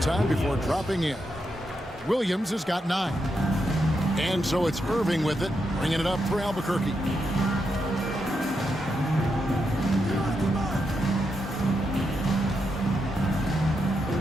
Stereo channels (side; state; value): both; normal; correlation 0.83